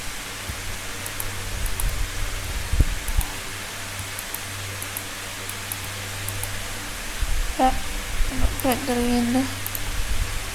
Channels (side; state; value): both; identical; correlation 1.00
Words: Ya, printer ini.